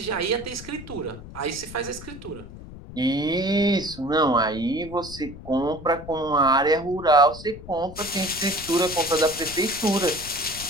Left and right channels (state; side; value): noise; left; rumble, 15 dB below the sound